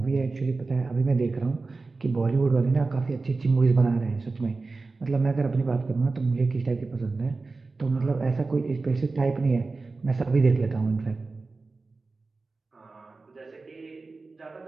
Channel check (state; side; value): quieter; left; 3.8 dB